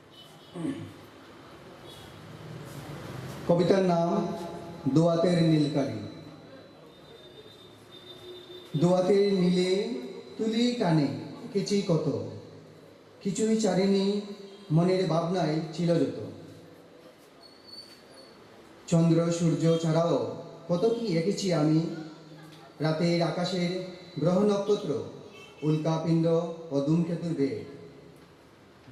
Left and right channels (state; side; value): identical; both; correlation 1.00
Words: কবিতার নাম দোয়াতের নীলকালি। দোয়াতের নীলে তুলি টানে এঁকেছি কত, কিছুই চারিনি মনের ভাবনায় ছিল যত। চন্দ্র সূর্য ছাড়াও কত কি এঁকেছি আমি, রাতের আকাশের গ্রহ নক্ষত্র, উল্কাপিণ্ড ও ধূমকেতুর বেগ।